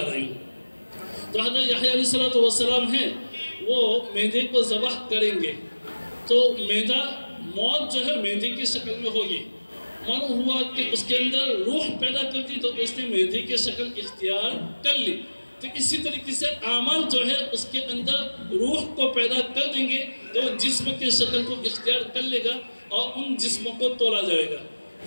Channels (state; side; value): inverted; both; correlation -1.00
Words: رہا ہے۔ تو حضرت یحییٰ علیہ السلام ہیں، وہ میدے کو ذبح کریں گے تو میدہ موت جو ہے میدے کی شکل میں ہوگی، معلوم ہوا کہ اس کے اندر روح پیدا کرتی تو اس نے میدے کی شکل اختیار کر لی۔ تو اسی طریقے سے اعمال جو ہے اس کے اندر روح کو پیدا کر دیں گے تو جسم کی شکل کو اختیار کر لے گا اور ان جسموں کو تولا جائے گا،